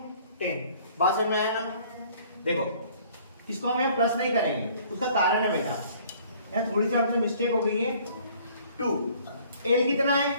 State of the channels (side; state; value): both; inverted; correlation -0.56